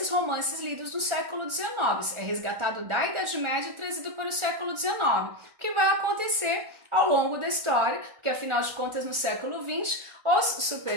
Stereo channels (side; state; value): left; late; 1.4 ms